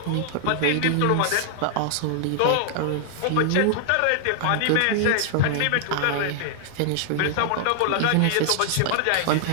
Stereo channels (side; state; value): both; different; correlation 0.00